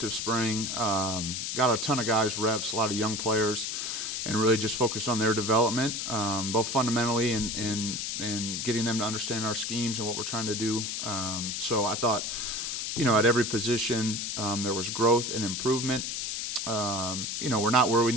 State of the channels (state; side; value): noise; left; hiss, 3 dB below the sound